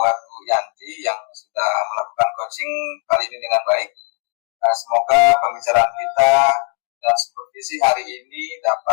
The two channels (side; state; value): right; quieter; 32.9 dB